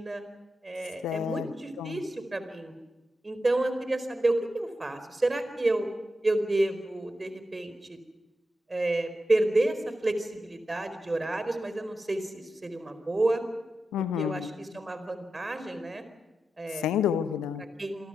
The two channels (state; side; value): normal; both; correlation 0.89